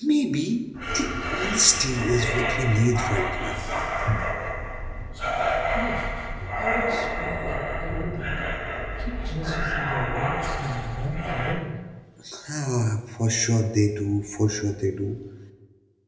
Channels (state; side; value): identical; both; correlation 1.00